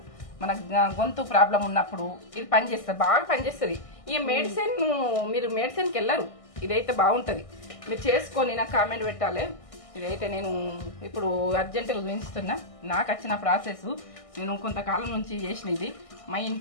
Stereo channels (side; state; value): right; late; 1.6 ms